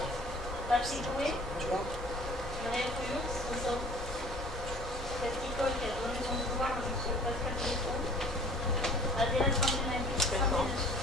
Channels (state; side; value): normal; both; correlation 0.49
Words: Patrick Bouet. Marie Couillon. Présent. Cette école qui a donné son pouvoir à M. Pascal Breton. Adéla Sandénagui.